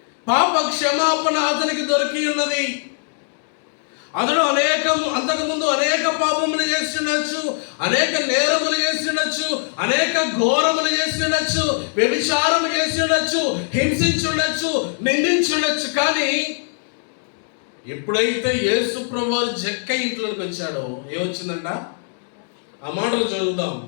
పాప క్షమాపణ అతనికి దొరికి ఉన్నది. అతడు అంతకుముందు అనేక పాపములు చేసి ఉండొచ్చు, అనేక నేరములు చేసి ఉండొచ్చు, అనేక ఘోరములు చేసి ఉండొచ్చు, వ్యభిచారము చేసి ఉండొచ్చు, హింసించి ఉండొచ్చు, నిందించి ఉండొచ్చు. కానీ ఎప్పుడైతే యేసు ప్రభువు జక్క ఇంట్లోకి వచ్చాడో ఏమొచ్చిందంట? ఆ మాటలు చదువుదాం.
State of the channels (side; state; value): right; silent; digital silence